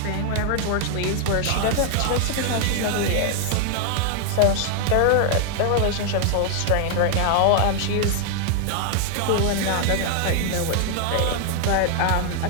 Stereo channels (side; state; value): both; different; correlation 0.00